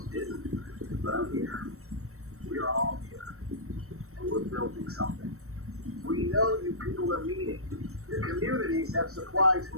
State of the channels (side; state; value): left; late; 0.63 ms